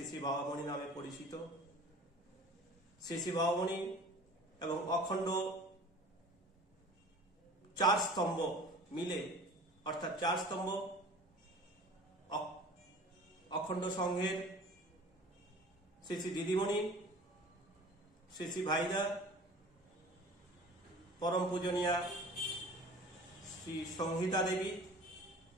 শ্রী বাবামণি নামে পরিচিত। শ্রী শ্রী বাবামণি এবং অখণ্ড 4 স্তম্ভ মিলে, অর্থাৎ 4 স্তম্ভ অখণ্ড সংঘের শ্রী শ্রী দিদিমণি, শ্রী শ্রী ভাইদা, পরম পূজনীয়া শ্রী সংহিতা দেবী,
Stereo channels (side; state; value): both; normal; correlation 0.43